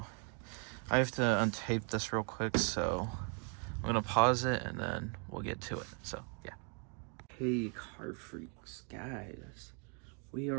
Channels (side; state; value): left; quieter; 37.8 dB